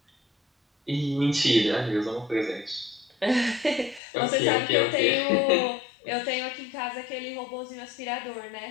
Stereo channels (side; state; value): right; drops out; at 4.0 s